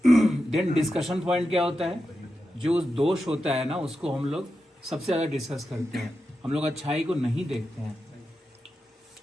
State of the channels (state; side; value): normal; both; correlation 0.89